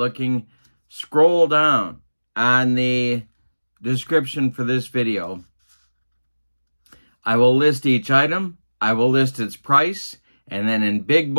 scroll down on the description for this video. I will list each item, I will list its price, and then in big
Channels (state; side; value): inverted; both; correlation -1.00